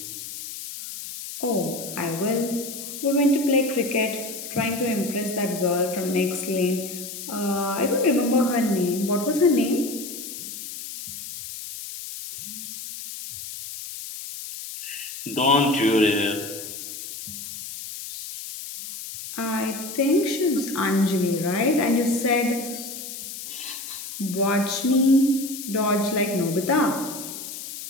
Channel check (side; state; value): left; noise; hiss, 10 dB below the sound